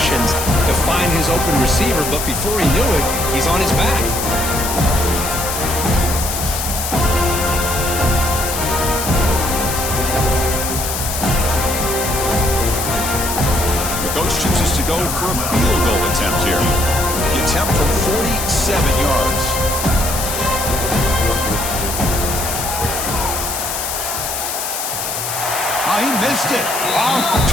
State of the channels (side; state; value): left; noise; hiss, 4 dB below the sound